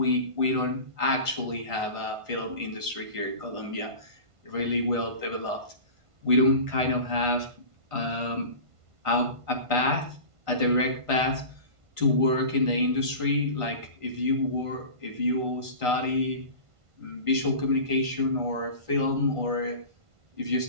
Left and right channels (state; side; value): late; left; 1.5 ms